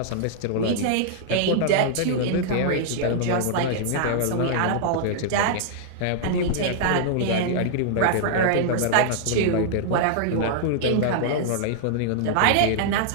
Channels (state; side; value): different; both; correlation -0.01